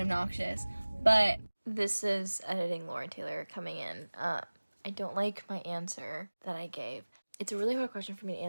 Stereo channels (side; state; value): both; inverted; correlation -1.00